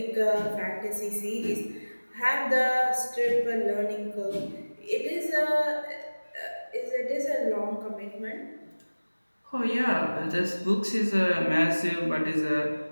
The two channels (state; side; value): inverted; both; correlation -1.00